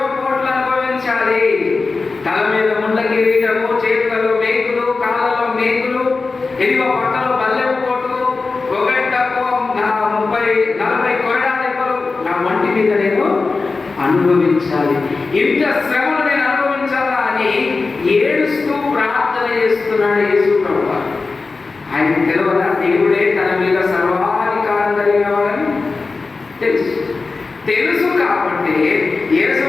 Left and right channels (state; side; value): quieter; right; 4.0 dB